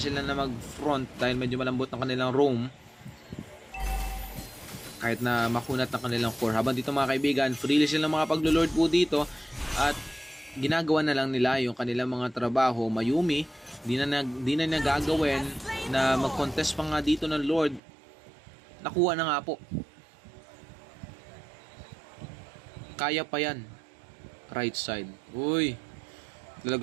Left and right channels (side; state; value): left; drops out; at 17.8 s